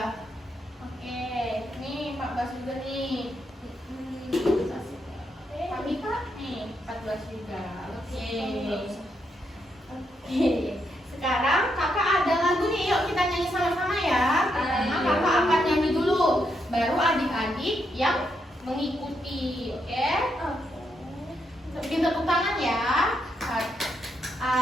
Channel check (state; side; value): normal; both; correlation 0.79